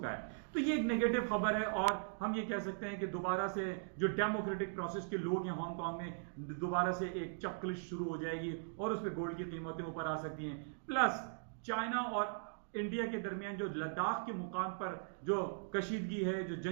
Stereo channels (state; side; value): silent; left; digital silence